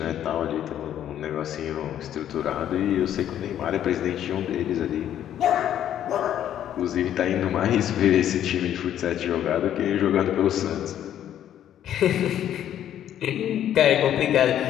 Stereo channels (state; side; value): quieter; right; 10.8 dB